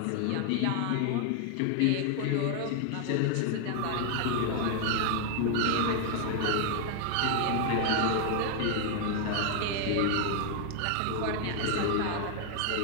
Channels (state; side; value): different; both; correlation 0.00